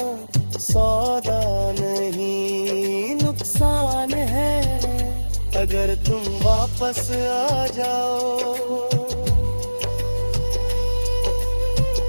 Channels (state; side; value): inverted; both; correlation -1.00